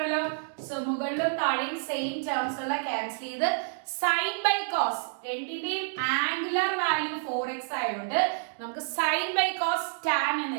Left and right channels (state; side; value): silent; left; digital silence